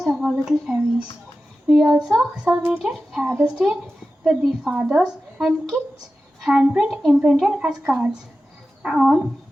of our little fairies. We also celebrated Father's Day with the fathers and kids handprint imprinted as cards. On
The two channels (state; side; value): normal; both; correlation 0.94